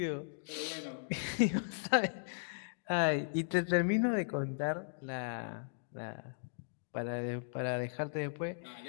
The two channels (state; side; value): silent; right; digital silence